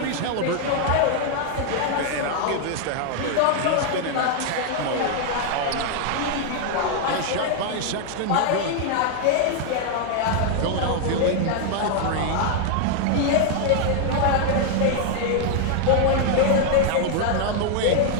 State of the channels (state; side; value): different; both; correlation 0.00